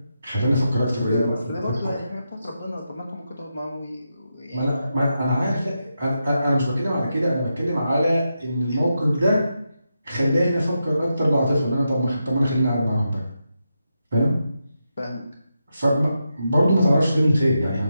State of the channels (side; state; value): both; inverted; correlation -0.86